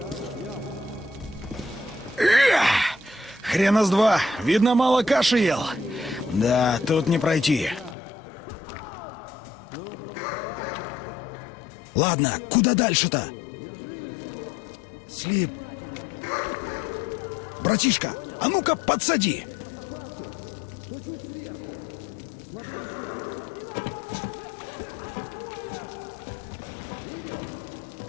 Хрена с два. Видно, мало каши ел. Да, тут не пройти. Ладно, куда дальше-то? А что если... Братишка, а ну-ка подсади!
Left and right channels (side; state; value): right; drops out; at 8.0 s